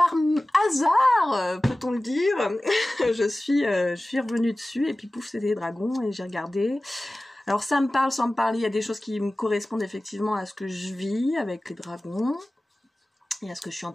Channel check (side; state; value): both; normal; correlation 0.97